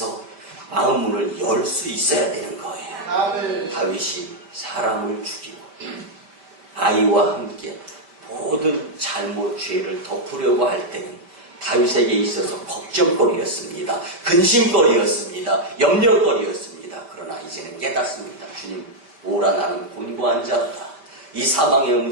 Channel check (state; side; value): late; left; 5.1 ms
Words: 마음 문을 열 수 있어야 되는 거예요. 다윗이 사람을 죽이고 아이와 함께 모든 잘못 죄를 덮으려고 할 때는 다윗에게 있어서 걱정거리였습니다. 근심거리였습니다. 염려거리였습니다. 그러나 이제는 깨닫습니다. 주님, 오라 나는 곤고한 자다. 이 사망의